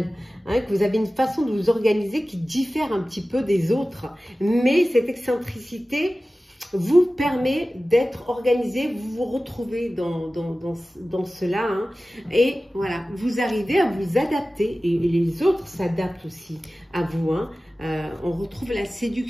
Hein, que vous avez une façon de vous organiser qui diffère un petit peu des autres. Mais cette excentricité vous permet d'être organisé, vous vous retrouvez dans cela. Hein, et voilà, vous arrivez à vous adapter. Et les autres s'adaptent aussi à vous. Hein. On retrouve la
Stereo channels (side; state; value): both; normal; correlation 0.96